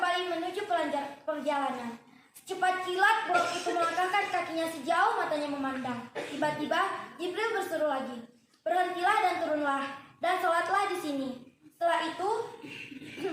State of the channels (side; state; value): both; identical; correlation 1.00